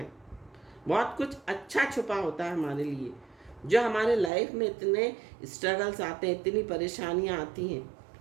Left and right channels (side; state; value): left; drops out; at 4.3 s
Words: बहुत कुछ अच्छा छुपा होता है हमारे लिए। जो हमारे लाइफ में इतने स्ट्रगल्स आते हैं, इतनी परेशानियां आती हैं,